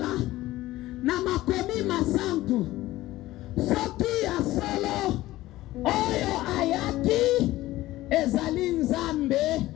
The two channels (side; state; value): right; quieter; 16.6 dB